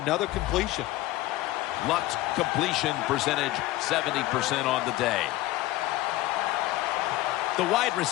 completion. Luck's completion percentage 70% on the day. The wide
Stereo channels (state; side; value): quieter; right; 17.0 dB